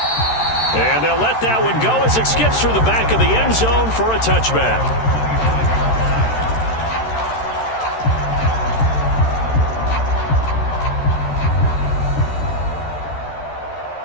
And they'll let that one go as it skips through the back of the end zone for a touchback.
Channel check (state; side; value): late; right; 13 ms